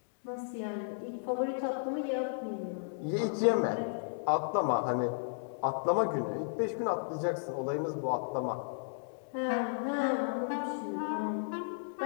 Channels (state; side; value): silent; right; digital silence